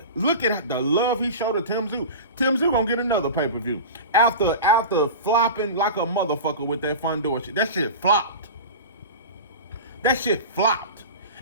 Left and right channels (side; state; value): both; inverted; correlation -0.30